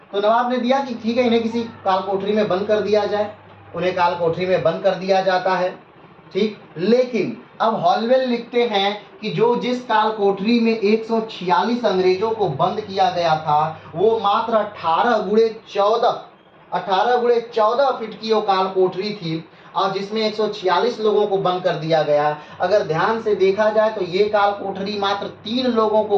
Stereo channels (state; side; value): identical; both; correlation 1.00